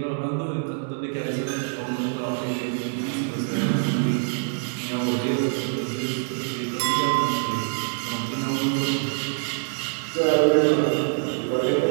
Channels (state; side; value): silent; left; 62 dB below the other